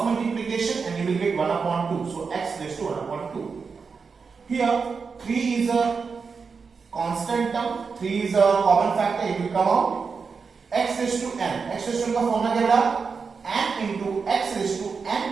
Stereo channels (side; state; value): left; quieter; 5.2 dB